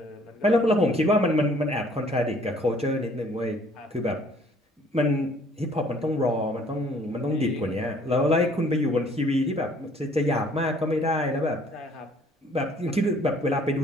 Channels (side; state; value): both; normal; correlation 0.59